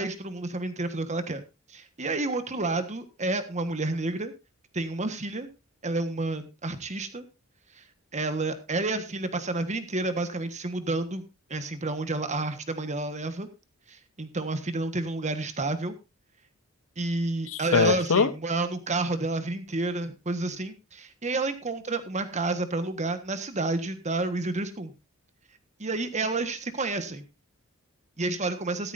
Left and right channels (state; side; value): normal; both; correlation 0.26